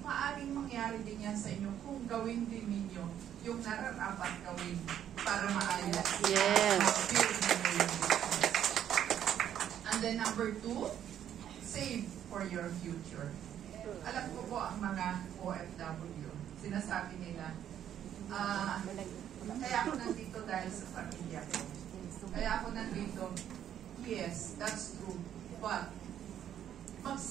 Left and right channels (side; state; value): left; quieter; 10.2 dB